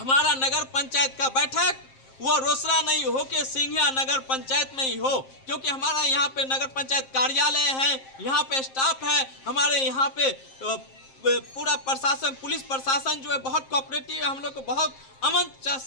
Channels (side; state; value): right; late; 7.5 ms